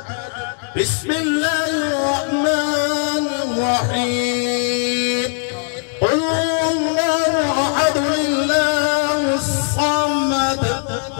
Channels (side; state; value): right; silent; 67 dB below the other